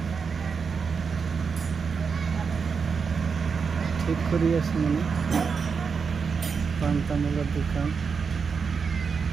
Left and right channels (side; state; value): left; quieter; 5.7 dB